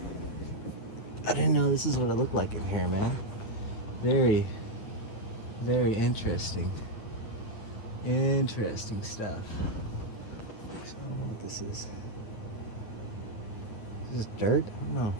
I didn't know this is what it looked like in here, man. Very, very interesting. Interesting stuff. So I don't know what this is. Is this dirt? I don't know.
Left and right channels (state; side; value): late; right; 9.1 ms